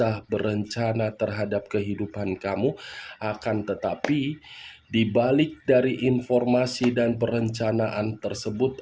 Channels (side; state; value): both; identical; correlation 1.00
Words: berencana terhadap kehidupan kamu, akan tetapi di balik dari informasi dan perencanaan